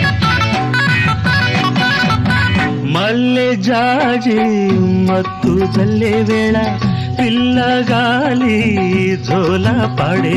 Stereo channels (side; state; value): both; identical; correlation 1.00